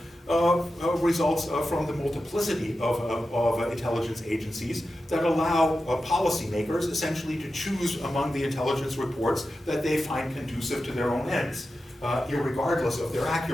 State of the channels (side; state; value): both; normal; correlation 0.91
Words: results from the multiplicity of intelligence agencies that allow policymakers essentially to choose among the intelligence reports that they find conducive to their own ends, irregardless of their